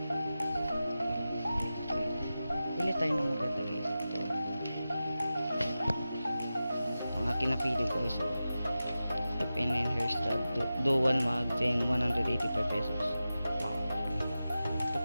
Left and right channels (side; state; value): both; inverted; correlation -0.93